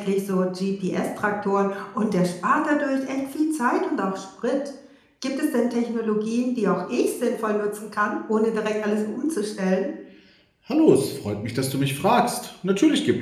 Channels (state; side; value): identical; both; correlation 1.00